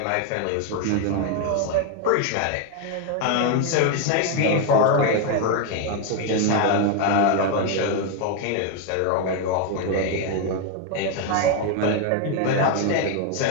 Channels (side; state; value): both; different; correlation 0.01